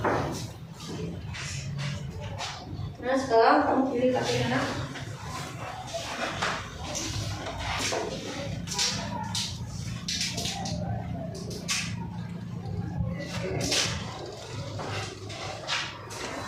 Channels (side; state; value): both; identical; correlation 1.00